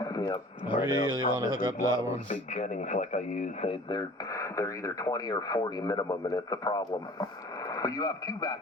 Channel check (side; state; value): both; normal; correlation 0.45